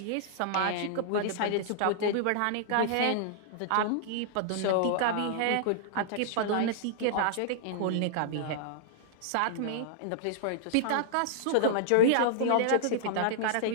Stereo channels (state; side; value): different; both; correlation -0.01